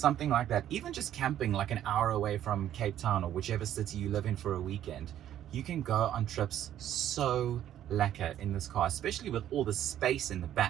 like that. Even just camping like an hour away from Cape Town or whichever city you live in for a weekend. You can go on trips so lekker in this car, especially with all the space in the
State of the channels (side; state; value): left; quieter; 11.4 dB